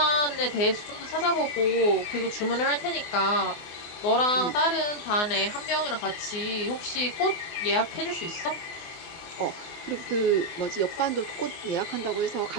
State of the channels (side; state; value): right; late; 24 ms